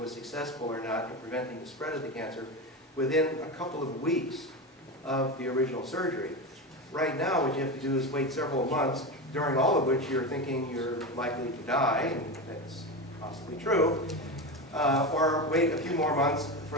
successful or not in preventing the spread of the cancer within a couple of weeks of the original surgery. Right now, what you have to do is wait several months, during all of which you're thinking you're likely to die, and that's possibly true, or wait a few more months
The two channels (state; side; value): normal; both; correlation 0.20